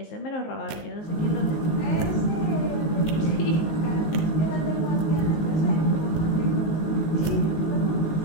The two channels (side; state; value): right; late; 19 ms